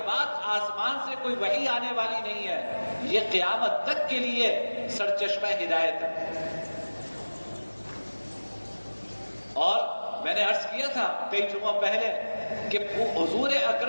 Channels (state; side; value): inverted; both; correlation -1.00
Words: بعد آسمان سے کوئی وحی آنے والی نہیں ہے۔ یہ قیامت تک کے لیے سرچشمہ ہدایت ہے۔ اور میں نے عرض کیا تھا کئی جمعہ پہلے کہ حضور